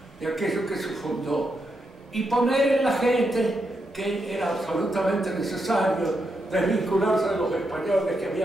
y aquello que se fundó y poner en la gente que era absolutamente necesario desvincularse de los españoles que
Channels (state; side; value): normal; both; correlation 0.83